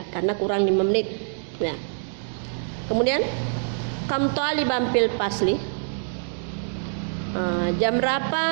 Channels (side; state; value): left; silent; digital silence